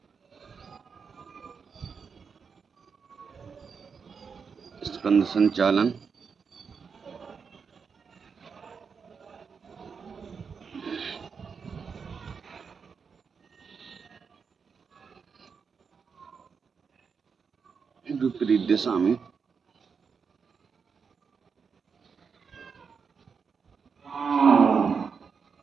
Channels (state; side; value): quieter; left; 5.8 dB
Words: स्कंद संचालन। विपरीत दिशा में